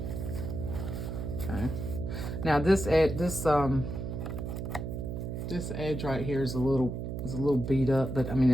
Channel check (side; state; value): right; noise; hum, 5 dB below the sound